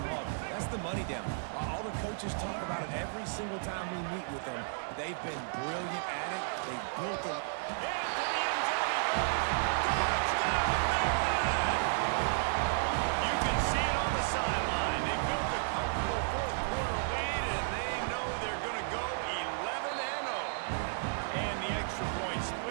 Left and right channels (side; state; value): left; silent; 56 dB below the other